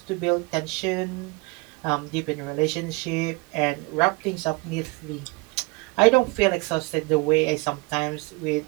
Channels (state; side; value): quieter; left; 26.2 dB